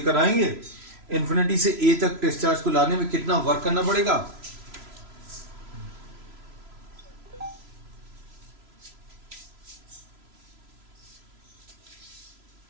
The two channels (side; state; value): left; late; 3.0 ms